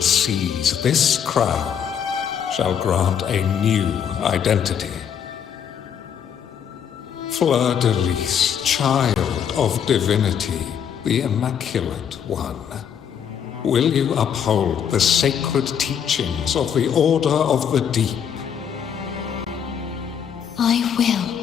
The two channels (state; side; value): quieter; right; 8.1 dB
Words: seas, this crown shall grant a new identity. Fleur-de-Lis, child of divinity, the Immaculate One, will you uphold the sacred teachings of the Order of the Deep? I will.